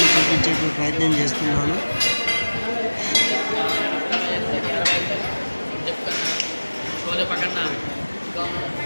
చూపించేటువంటి ప్రయత్నం చేస్తున్నాను.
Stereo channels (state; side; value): inverted; both; correlation -1.00